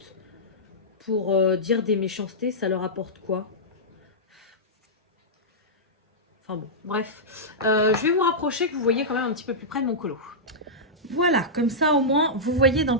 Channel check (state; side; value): normal; both; correlation -0.12